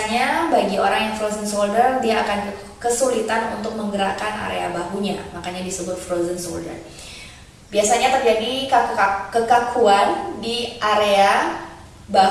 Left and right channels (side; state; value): both; identical; correlation 1.00